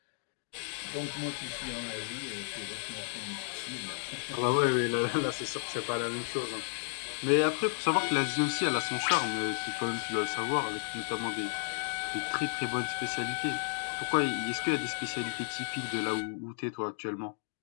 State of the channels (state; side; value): silent; right; digital silence